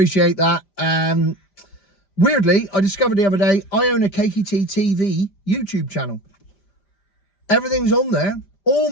that. Weirdly, I discovered the other day, I own a Cakey Tea TV YouTube channel. Everything's on there. All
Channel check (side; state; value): right; late; 5.0 ms